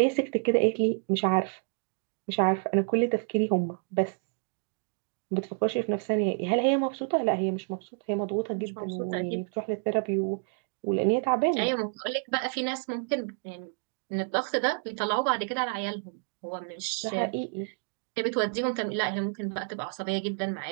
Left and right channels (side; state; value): left; silent; 58 dB below the other